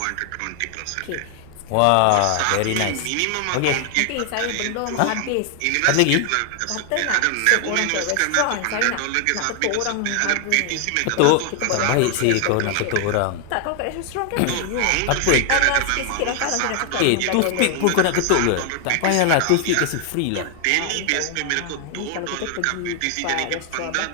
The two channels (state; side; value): different; both; correlation 0.00